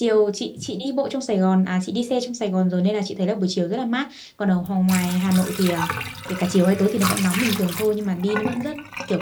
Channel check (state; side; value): identical; both; correlation 1.00